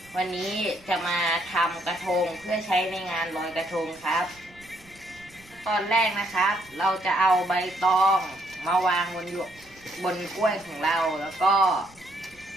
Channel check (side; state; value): right; noise; rumble, 26 dB below the sound